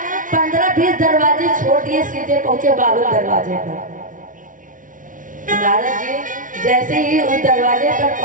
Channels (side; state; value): left; late; 0.38 ms